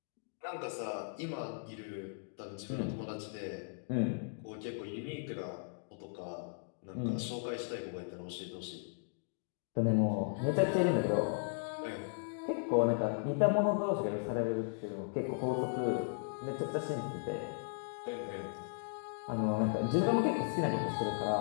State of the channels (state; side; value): silent; right; digital silence